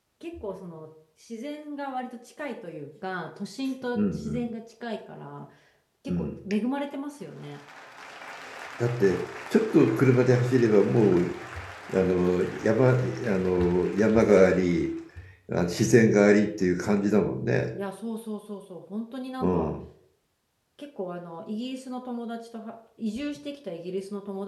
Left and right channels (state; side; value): identical; both; correlation 1.00